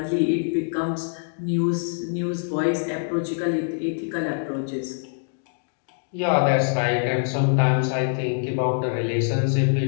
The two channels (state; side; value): silent; right; digital silence